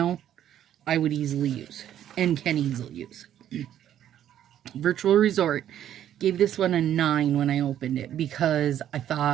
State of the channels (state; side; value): quieter; left; 10.9 dB